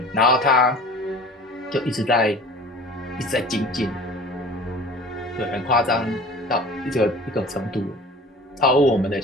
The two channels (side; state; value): both; normal; correlation 0.41